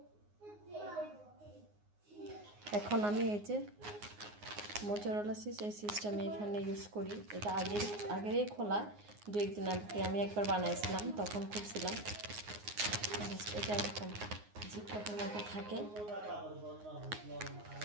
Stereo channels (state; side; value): late; left; 9.6 ms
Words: এখন আমি এই যে মোজারেলা চিজ, এই চিজটা আমি এখানে ইউজ করি। এটা আগেরই খোলা, দু একদিন আগে আমি একবার বানাইছিলাম, তখন খুলছিলাম। এটা এরকম জিপলকের মতো থাকে,